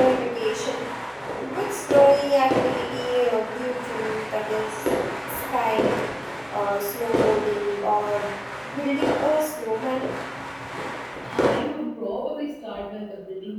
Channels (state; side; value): identical; both; correlation 1.00